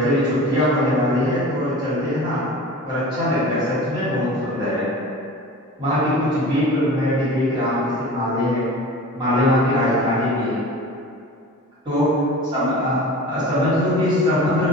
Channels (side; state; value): both; normal; correlation 0.37